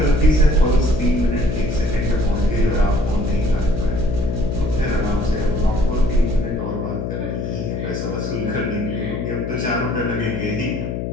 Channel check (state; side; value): noise; left; hum, 3 dB below the sound